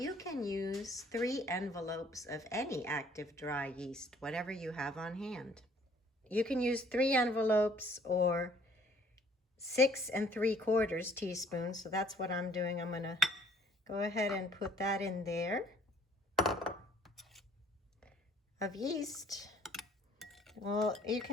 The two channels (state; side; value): normal; both; correlation 0.60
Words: can use 3 envelopes of any active dry yeast, whatever you have on hand. You can use 3 envelopes or 6 3/4 teaspoons. So that's what I'm doing. I'm gonna go ahead and put that in there of yeast. Well, you